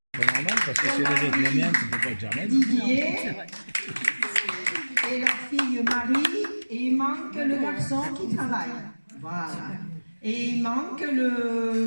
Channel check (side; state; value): both; inverted; correlation -1.00